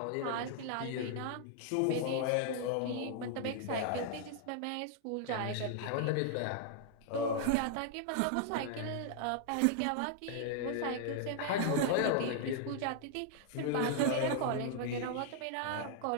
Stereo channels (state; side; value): different; both; correlation -0.01